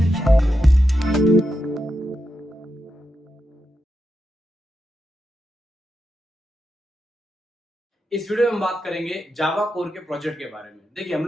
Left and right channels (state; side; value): normal; both; correlation 0.86